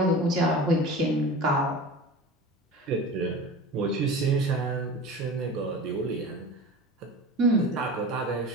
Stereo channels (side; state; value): both; normal; correlation 0.34